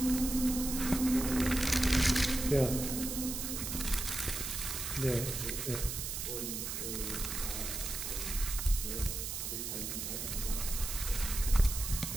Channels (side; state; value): right; noise; hiss, 4 dB below the sound